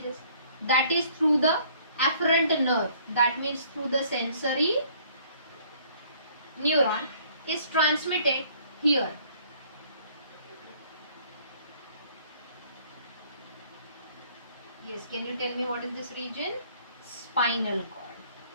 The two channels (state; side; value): inverted; both; correlation -0.59